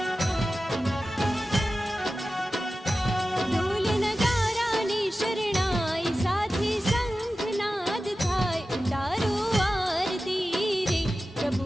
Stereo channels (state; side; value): normal; both; correlation 0.94